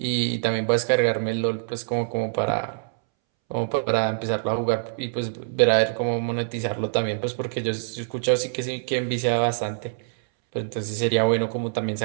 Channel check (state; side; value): silent; left; 62 dB below the other